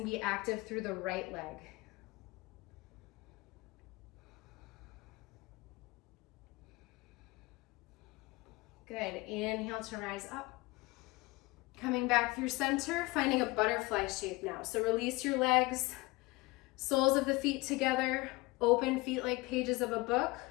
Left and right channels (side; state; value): right; quieter; 22.5 dB